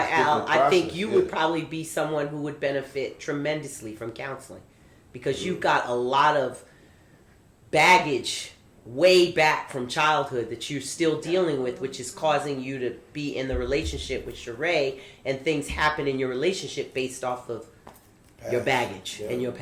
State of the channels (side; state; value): both; identical; correlation 1.00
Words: Al, different I think process, you yeah. would probably be someone who would benefit tremendously from counseling because you've got a lot of baggage way back from childhood that you're still dealing with, which is causing you to be in the relationship with Sheree, and things happen in your relationship based off of your baggage and your